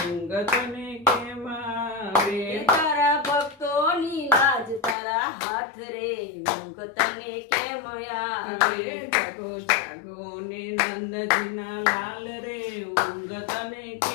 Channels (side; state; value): right; drops out; at 5.0 s